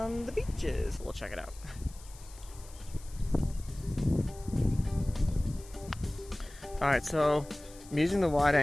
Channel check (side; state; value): left; noise; hiss, 21 dB below the sound